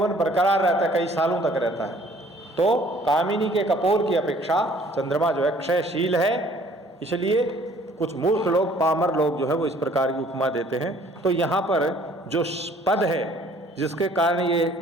बरकरार रहता है, कई सालों तक रहता है। तो कामिनी के कपोल की अपेक्षा चंद्रमा जो है क्षयशील है, इसलिए कुछ मूर्ख लोग, पामर लोग जो है वो इस प्रकार की उपमा देते हैं। तो यहाँ पर जो पद है जिसके कारण ये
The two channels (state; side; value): normal; both; correlation 0.56